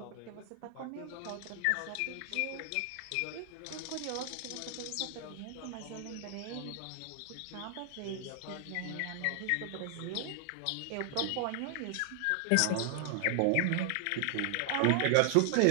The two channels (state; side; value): different; both; correlation 0.00